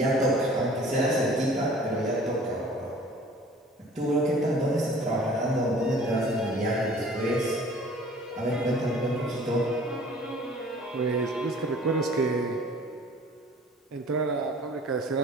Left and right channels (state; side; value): normal; both; correlation 0.49